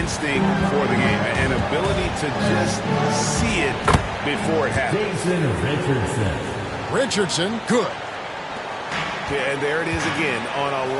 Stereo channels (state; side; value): identical; both; correlation 1.00